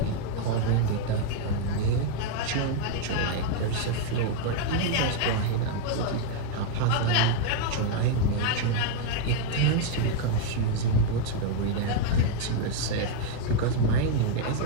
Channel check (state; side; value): different; both; correlation 0.00